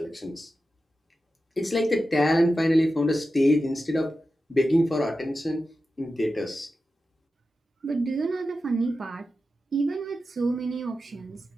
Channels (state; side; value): normal; both; correlation 0.92